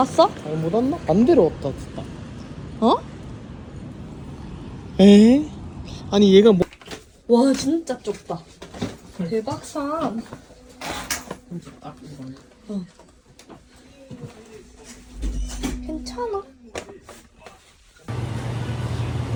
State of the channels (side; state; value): both; identical; correlation 1.00